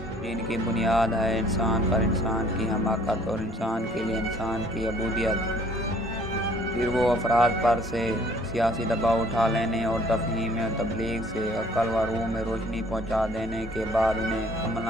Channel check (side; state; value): both; normal; correlation 0.57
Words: जिनकी बुनियाद है इंसान पर इंसान की हमाकत और इंसान के लिए इंसान की अबूदियत। फिर वो अफराद पर से सियासी दबाव उठा लेने और तफ़हीम और तबलीग से अक़ल व रूह में रोशनी पहुँचा देने के बाद उन्हें